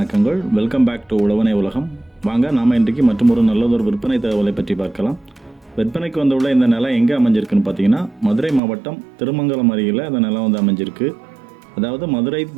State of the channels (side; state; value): left; drops out; at 8.6 s